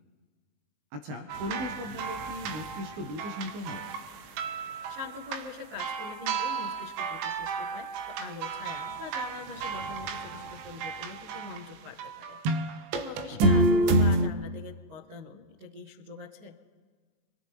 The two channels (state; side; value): late; left; 19 ms